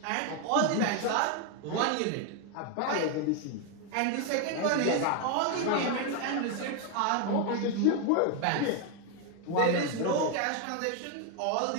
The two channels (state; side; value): different; both; correlation 0.01